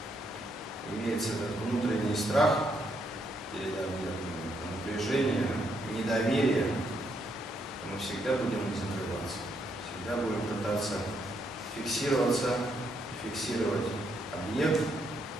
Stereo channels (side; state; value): both; normal; correlation 0.75